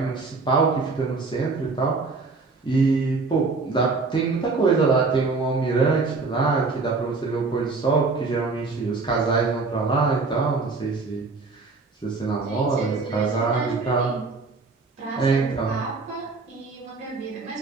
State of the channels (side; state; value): left; quieter; 4.0 dB